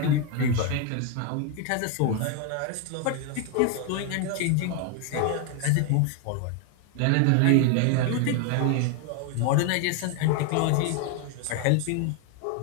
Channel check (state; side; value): different; both; correlation 0.01